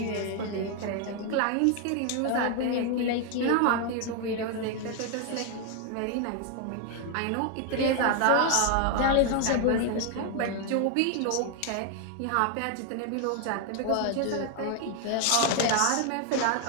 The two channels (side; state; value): both; different; correlation 0.01